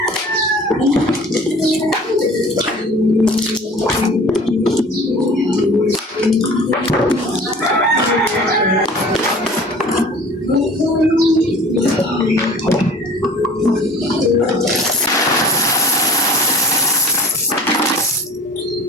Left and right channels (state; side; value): normal; both; correlation 0.45